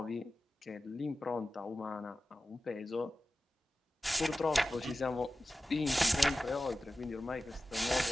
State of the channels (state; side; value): normal; both; correlation 0.95